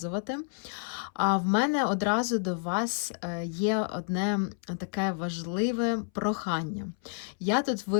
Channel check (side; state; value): right; silent; 58 dB below the other